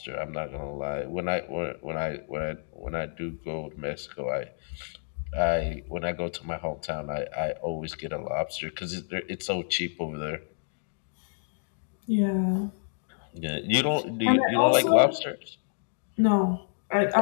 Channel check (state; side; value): silent; right; digital silence